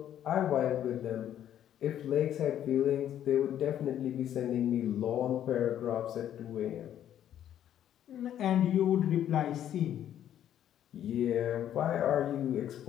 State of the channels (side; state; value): right; quieter; 10.8 dB